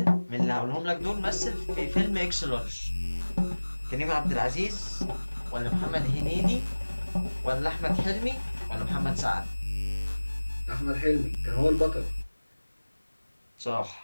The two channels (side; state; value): both; inverted; correlation -1.00